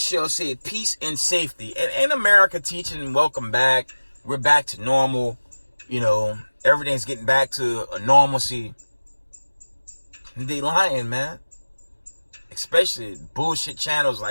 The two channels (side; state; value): both; inverted; correlation -1.00